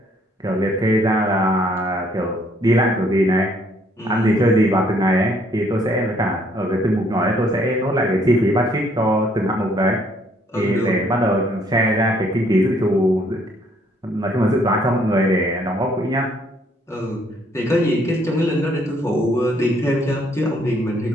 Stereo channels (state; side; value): normal; both; correlation 0.65